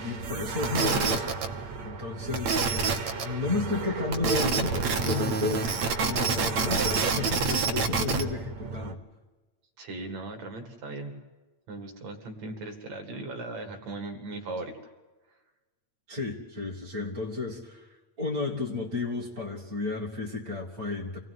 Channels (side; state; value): left; late; 8.8 ms